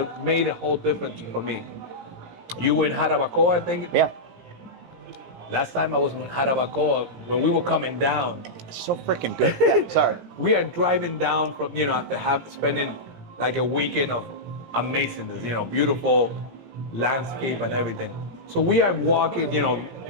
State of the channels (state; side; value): late; left; 17 ms